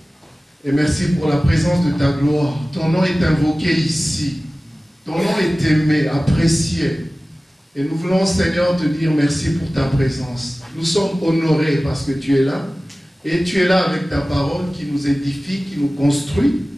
et merci pour la présence de ta gloire. Ton nom est invoqué ici. Ton nom est aimé, apprécié. Et nous voulons, Seigneur, te dire merci pour ta présence. Nous sommes honorés parce que tu es là. Et tu es là avec ta parole qui nous édifie, qui nous construit,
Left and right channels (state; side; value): normal; both; correlation 0.97